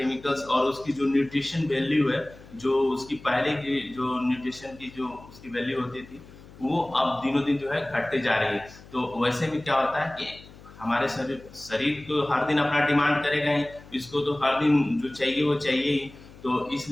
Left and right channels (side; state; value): left; noise; hum, 20 dB below the sound